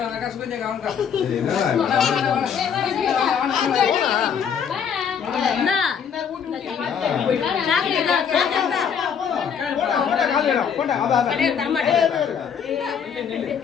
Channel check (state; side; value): quieter; right; 7.4 dB